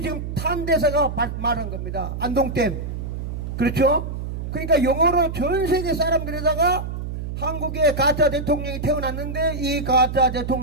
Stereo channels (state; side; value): noise; right; hum, 6 dB below the sound